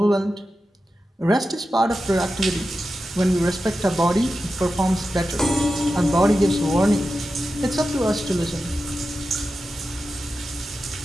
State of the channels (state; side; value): normal; both; correlation 0.91